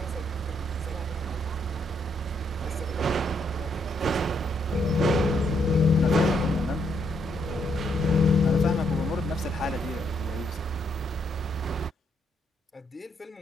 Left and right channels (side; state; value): both; normal; correlation 0.75